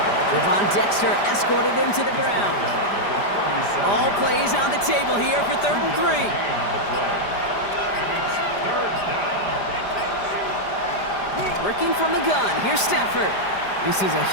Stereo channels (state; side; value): late; right; 5.0 ms